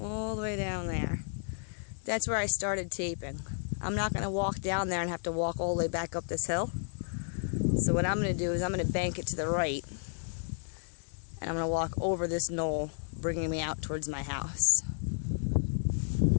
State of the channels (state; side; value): silent; right; digital silence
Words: the way down there, that's where I started taping. I'm not going to walk down there and have to walk all the way back up this hill. So what I'm going to do is I'm going to bank it to the right, and I'm going to walk over this knoll, bringing me out towards my house.